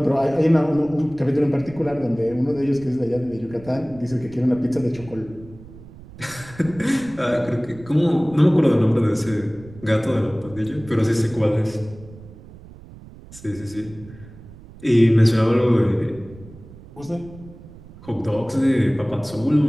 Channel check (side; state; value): right; noise; rumble, 19 dB below the sound